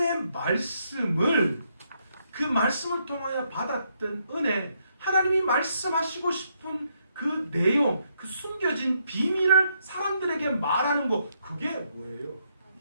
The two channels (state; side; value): inverted; both; correlation -0.76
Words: 말씀을, 그 말씀을 통하여 받았던 은혜, 하나님이 말씀하시고 싶은 그 내용, 그 숨겨진 비밀을 사람들에게 말하는 것, 그게 뭐예요?